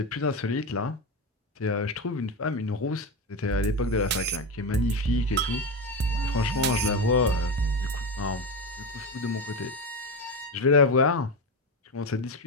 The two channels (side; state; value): both; normal; correlation 0.17